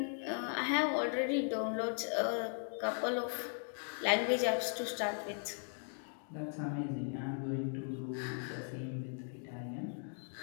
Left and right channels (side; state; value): right; silent; 52 dB below the other